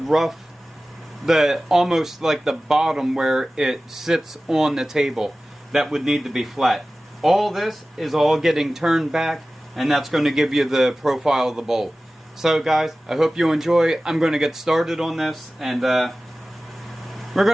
almost like the bottom where it sits on the table that would need to be flat. All this is all getting turned back, and that's going to give you the profile of the bowl. So guys, I hope you enjoy. I'm going to get started on this, and we're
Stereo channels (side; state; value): both; normal; correlation 0.96